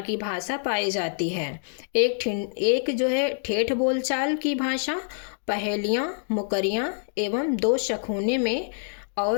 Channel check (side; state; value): right; silent; digital silence